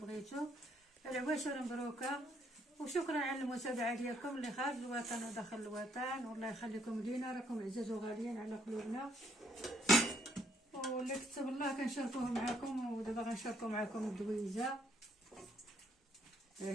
العواشر مبروكه وشكرا على المتابعه ديالكم اللي خارج الوطن وداخل الوطن، والله يخليكم لينا، راكم عزاز وغاليين على قلوبنا. واللي كتب الله كنشاركوه معكم، ودابا غنشاركو معكم الدويزه. ها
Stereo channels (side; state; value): both; normal; correlation 0.69